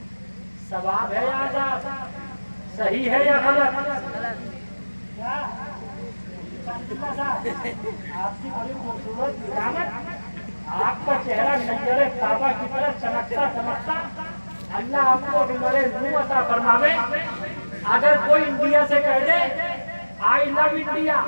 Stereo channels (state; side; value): inverted; both; correlation -1.00